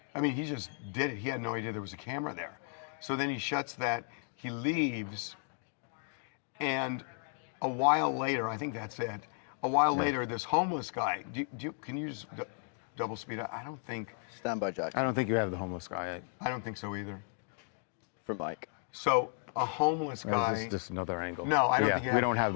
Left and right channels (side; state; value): right; silent; 55 dB below the other